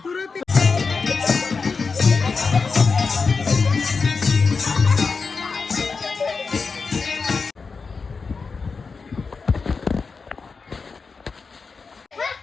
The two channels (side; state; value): right; quieter; 4.8 dB